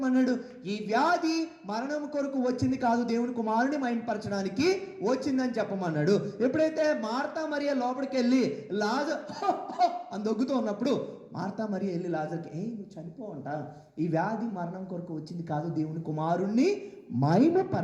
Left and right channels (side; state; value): both; identical; correlation 1.00